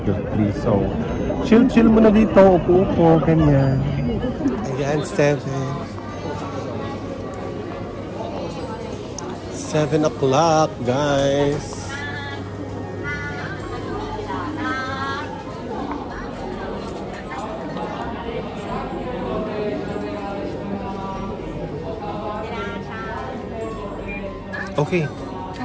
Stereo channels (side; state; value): both; identical; correlation 1.00